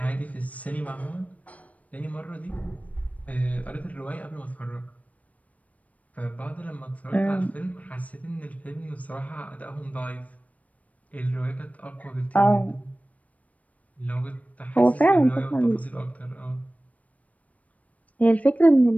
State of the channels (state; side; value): late; right; 0.069 ms